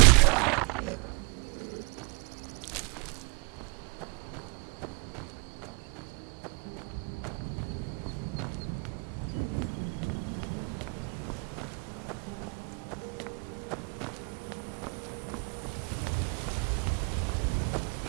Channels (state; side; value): quieter; left; 31.0 dB